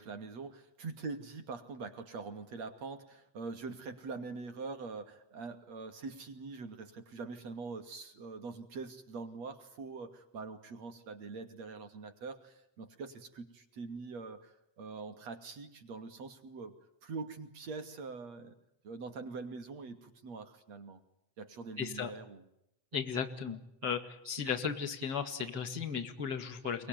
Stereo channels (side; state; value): left; late; 7.3 ms